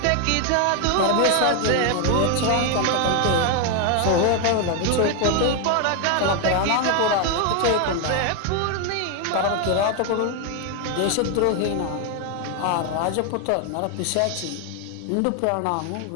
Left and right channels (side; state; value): both; different; correlation 0.01